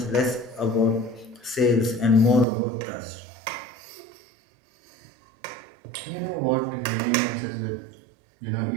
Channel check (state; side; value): drops out; left; at 2.5 s